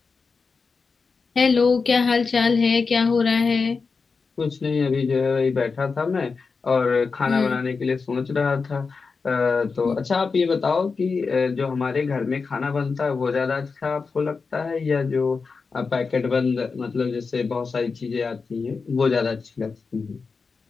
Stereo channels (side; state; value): right; quieter; 4.8 dB